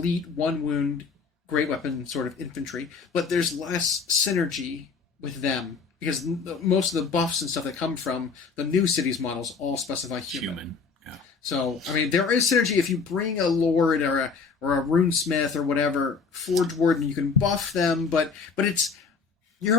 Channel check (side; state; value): right; quieter; 5.2 dB